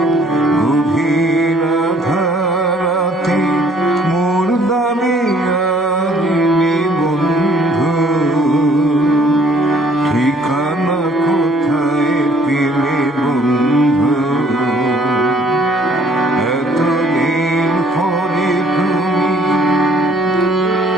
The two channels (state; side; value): normal; both; correlation 0.60